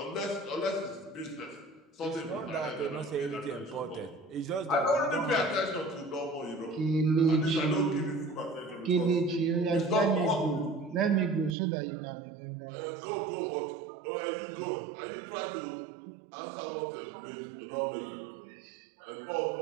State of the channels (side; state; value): left; drops out; at 11.6 s